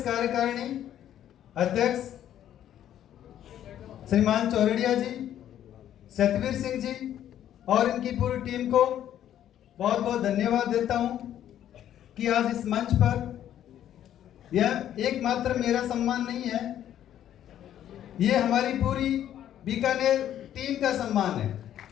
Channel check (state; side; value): quieter; right; 11.0 dB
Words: कार्यकारिणी अध्यक्ष श्रीमान चौरड़िया जी, सतवीर सिंह जी और इनकी पूरी टीम को बहुत बहुत धन्यवाद देता हूं कि आज इस मंच पर यह एकमात्र मेरा सम्मान नहीं है, ये हमारी पूरी बीकानेर टीम का सम्मान है,